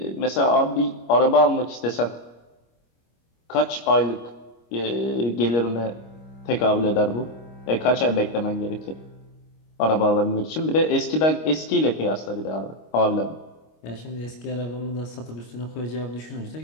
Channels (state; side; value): late; right; 25 ms